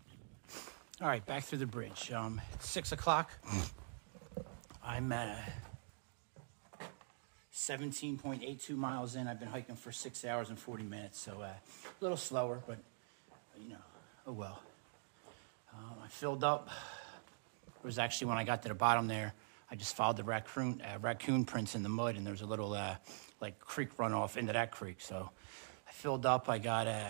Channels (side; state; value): left; silent; digital silence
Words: All right, back through the bridge. It's 6 o'clock. I'm 17.82 miles in. I've been hiking for 6 hours and 40 minutes, so a little slower, but you know, oh well. I filled up. It was actually when I got to the bottom there, I just followed the raccoon prints in the mud, and there's a little like creek runoff into that creek. So I filled up. I got